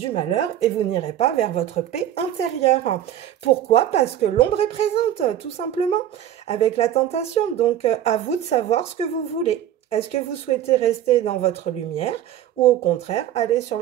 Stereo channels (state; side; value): quieter; left; 11.1 dB